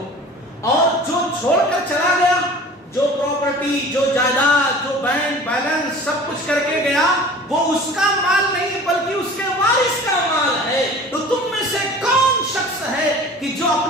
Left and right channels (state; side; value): normal; both; correlation 0.42